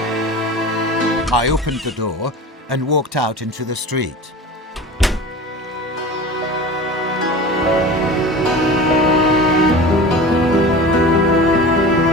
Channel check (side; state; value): both; normal; correlation 0.34